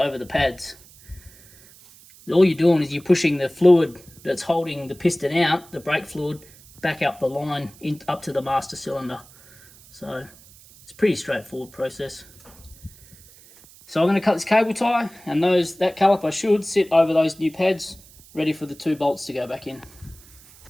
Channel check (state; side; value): noise; right; hiss, 24 dB below the sound